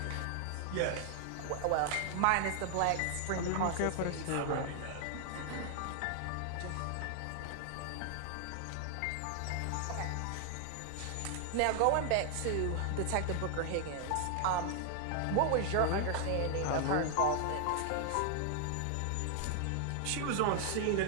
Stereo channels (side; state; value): both; different; correlation 0.00